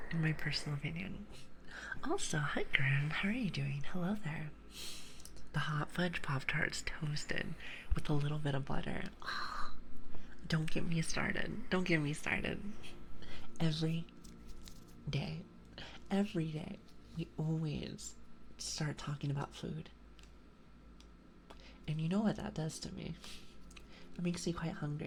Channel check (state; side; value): identical; both; correlation 1.00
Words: In my personal opinion. Also, hi Grim, how are you doing? Hello there. The Hot Fudge Pop-Tarts toasted with a little bit of butter. Oh, don't get me started. Every day, we always start talking about food. And you know what that does to me? It makes me quite